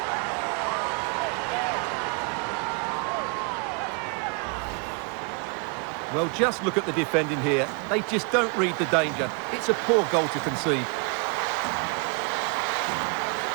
Well, just look at the defending here. They just don't read the danger. It's a poor goal to concede.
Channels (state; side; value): quieter; left; 35.1 dB